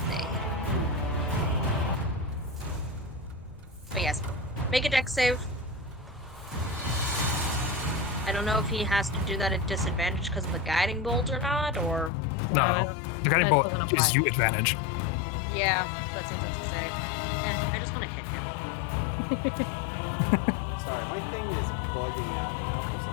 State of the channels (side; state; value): right; drops out; at 12.1 s